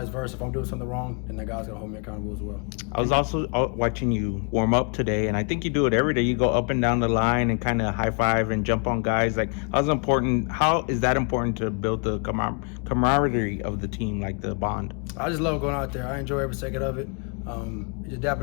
versa. If I'm doing something wrong, then that guy's going to hold me accountable as well. I was also watching you warm up today, and I think you do it every day. You go up and down the line and kind of high five and jump on guys. Like, how is that important to build the camaraderie of the team, like the bond? I just love going out there. I enjoy every second of it. Just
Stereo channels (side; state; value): right; quieter; 38.6 dB